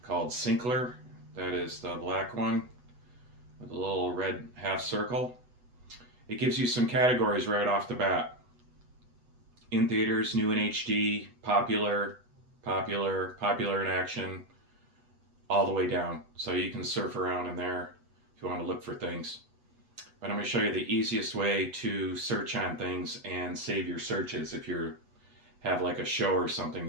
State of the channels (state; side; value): late; left; 8.1 ms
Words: called Syncler. That is the black one with a little red half circle. It gives you some categories right off the bat. In theaters, new in HD, popular, popular in action, all the way down. So you can surf around in there if you want to look for things. But I'm going to show you the easiest way to search on things and save your searches if you have like a show or something